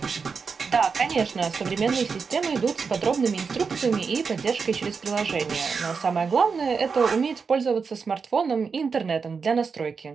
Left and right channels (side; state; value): left; quieter; 5.3 dB